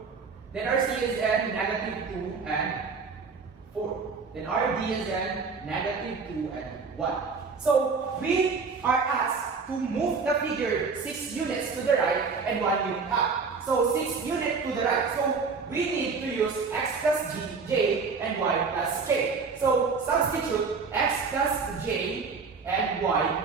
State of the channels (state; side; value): quieter; left; 4.9 dB